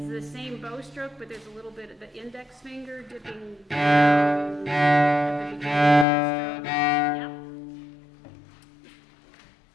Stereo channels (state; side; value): drops out; right; at 6.1 s